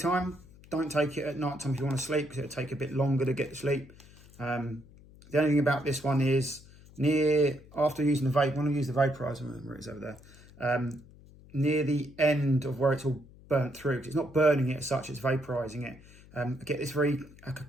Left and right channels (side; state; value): left; noise; hum, 23 dB below the sound